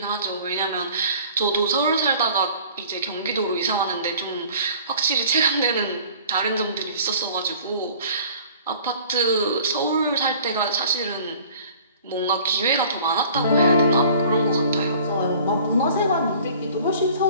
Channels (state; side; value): inverted; both; correlation -0.49